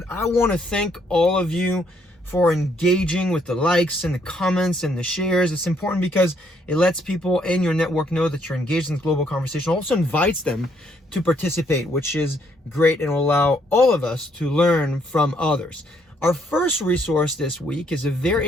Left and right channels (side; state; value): both; normal; correlation 0.70